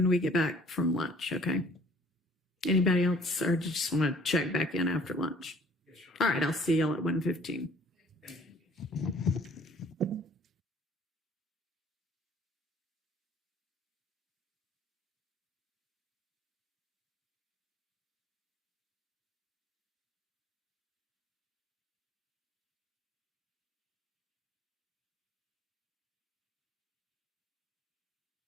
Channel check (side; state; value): both; normal; correlation 0.55